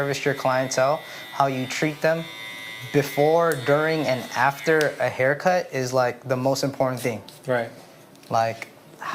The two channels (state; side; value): identical; both; correlation 1.00